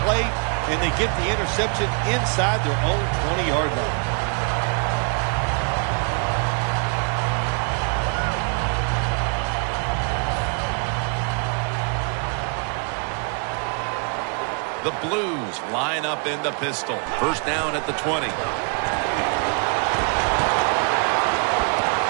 play, and they get the interception inside their own 20-yard line. The Blues line up in the pistol. First down at the 20. And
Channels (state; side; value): quieter; left; 37.9 dB